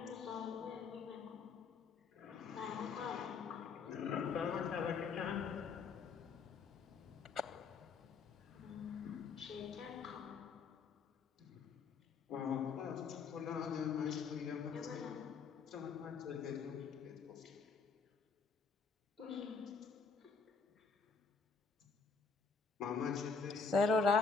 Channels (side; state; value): right; quieter; 5.1 dB